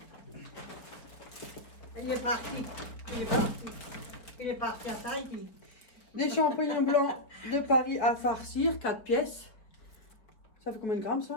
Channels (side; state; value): right; late; 4.3 ms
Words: Il est parti. Il est parti. Il est parti à Tahiti. Des champignons blancs de Paris à farcir, 4 pièces. Ça fait combien de grammes,